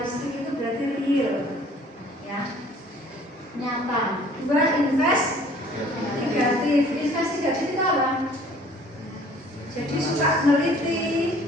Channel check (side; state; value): both; normal; correlation 0.54